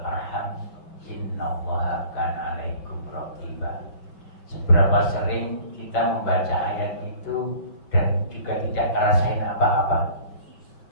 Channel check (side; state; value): right; late; 5.7 ms